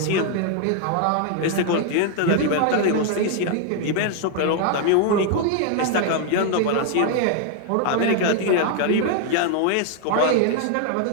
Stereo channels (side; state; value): both; different; correlation 0.00